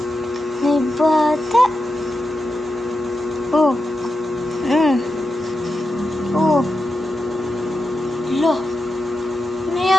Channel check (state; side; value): normal; both; correlation 0.89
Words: May bata. Oh. Oh. Lo. Ano